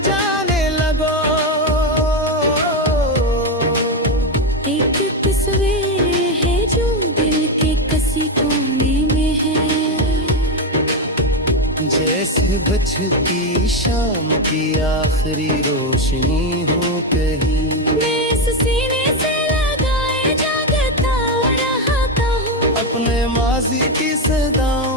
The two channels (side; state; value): both; normal; correlation 0.10